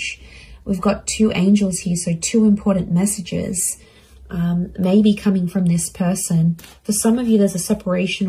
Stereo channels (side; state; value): both; identical; correlation 1.00